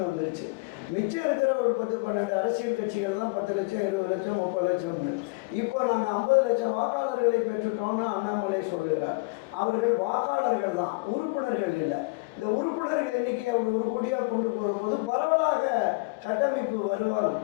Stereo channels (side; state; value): right; quieter; 28.3 dB